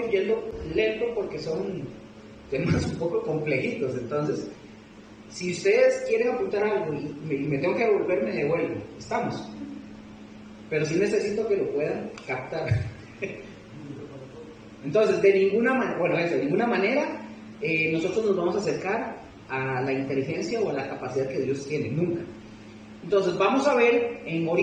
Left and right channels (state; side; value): identical; both; correlation 1.00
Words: yendo lento porque son temas un poco complejitos. Entonces, si ustedes quieren apuntar algo y me tengo que devolver, me devuelvo. Estamos. Pero sí necesito que lo puedan captar. Entonces, de ninguna manera nosotros nos vamos a acercar a la inteligencia o a la capacidad que Dios tiene, nunca. Entonces, vamos a ver,